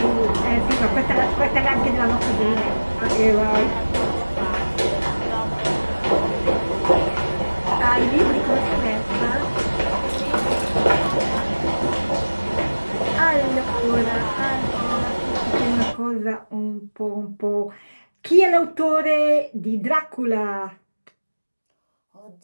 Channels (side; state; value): both; inverted; correlation -1.00